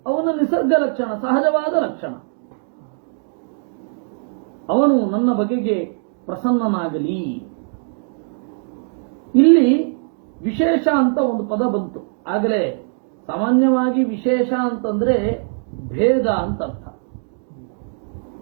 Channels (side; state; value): left; silent; digital silence